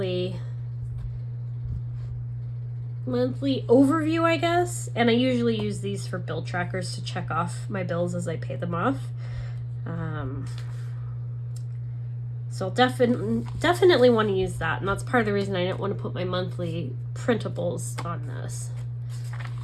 overview, I guess. And I usually use these for bill trackers to check off my bills as I pay them off. So definitely want to use that. And that's part of the reason I didn't want to put my monthly printables on this,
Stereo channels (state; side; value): identical; both; correlation 1.00